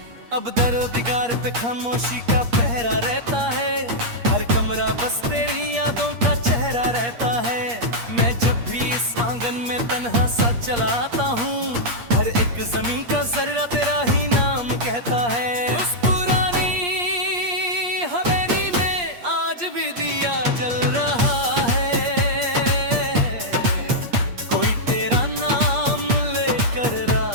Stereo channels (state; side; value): late; left; 8.5 ms